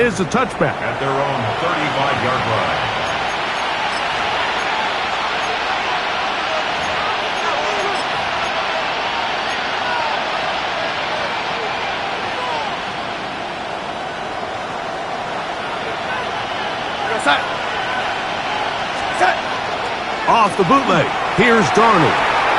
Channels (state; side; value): identical; both; correlation 1.00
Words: a touchback. At their own 35-yard line. Off the bootleg. Here's Darnold.